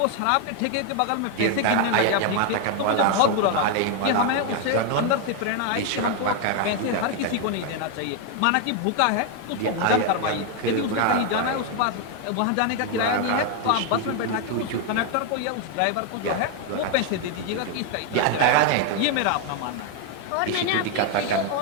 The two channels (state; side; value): different; both; correlation 0.01